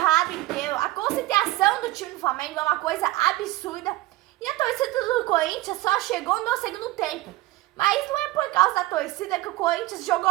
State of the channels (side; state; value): left; quieter; 17.9 dB